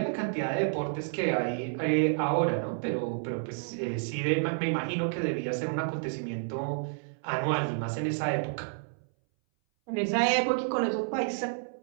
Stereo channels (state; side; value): silent; left; 58 dB below the other